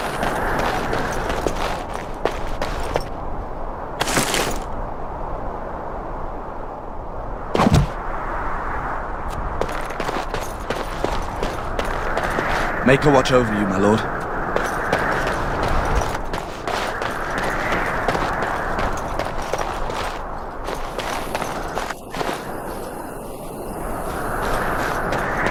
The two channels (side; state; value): both; identical; correlation 1.00